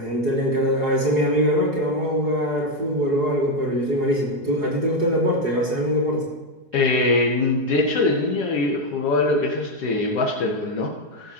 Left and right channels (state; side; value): late; left; 4.8 ms